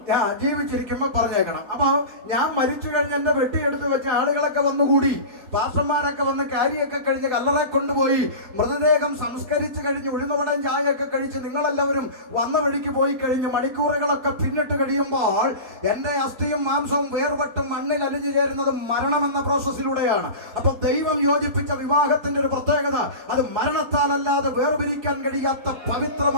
ഞാൻ ജീവിച്ചിരിക്കുമ്പോൾ പറഞ്ഞേക്കണം. അപ്പൊ ഞാൻ മരിച്ചു കഴിഞ്ഞ് എന്റെ വെട്ടിയെടുത്ത് വെച്ച ആളുകളൊക്കെ വന്നുകൂടി, പാസ്റ്റർമാരൊക്കെ വന്ന് കാരിയൊക്കെ കഴിഞ്ഞ് കല്ലറ കൊണ്ടുപോയി മൃതദേഹം സംസ്കരിച്ച് കഴിഞ്ഞ് ഉഴുന്നുവടം ചായയൊക്കെ കഴിച്ച് നിങ്ങളെല്ലാവരും വന്ന വഴിക്ക് പോയി കഴിഞ്ഞ് മണിക്കൂറുകളൊക്കെ പിന്നിട്ട് കഴിയുമ്പോൾ എന്റെ അസ്ഥിയും മാംസവും വേർപെട്ടും മണ്ണിൽ അലിഞ്ഞു ചേരുന്നത് മരണമെന്ന പ്രോസസ്സിലൂടെയാണ്. അപ്പൊ ദൈവം യോജിപ്പിച്ച വിവാഹത്തിന്റെ ഒരു പ്രത്യേകത, അത് മരണത്താലല്ലാതെ വേർപിരിക്കാൻ കഴിയാത്ത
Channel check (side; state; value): left; late; 4.3 ms